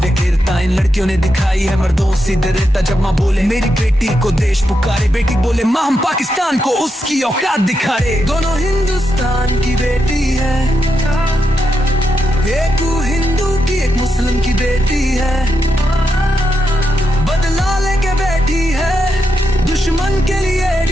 इन लड़कियों ने दिखाई है मर्दों सी दृढ़ता। जब माँ बोले मेरी बेटी को देश पुकारे, बेटी बोले माँ हम पाकिस्तान को उसकी औकात दिखाए। दोनों हिंदुस्तान की बेटी है, एक हिंदू की एक मुस्लिम की बेटी है, बदला लेके बैठी है दुश्मन के लिए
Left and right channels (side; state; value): both; normal; correlation 0.84